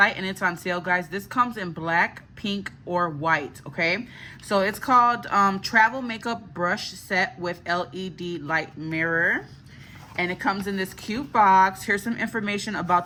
and it's on sale, guys. This comes in black, pink, or white, okay? So it's called Travel Makeup Brush Set with LED Light Mirror. And it comes in this cute box. Here's some information about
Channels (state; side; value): identical; both; correlation 1.00